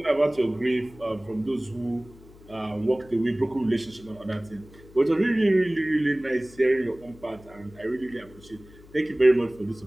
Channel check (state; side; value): noise; left; hum, 23 dB below the sound